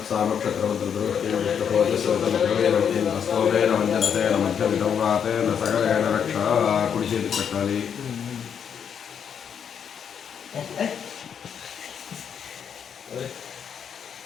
మధ్యమితం వాతేన సగరేణ రక్ష కుడి చేతికి పెట్టాలి.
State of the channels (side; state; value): right; quieter; 7.8 dB